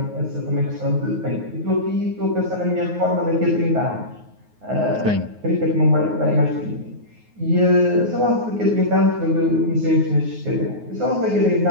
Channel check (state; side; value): late; left; 9.5 ms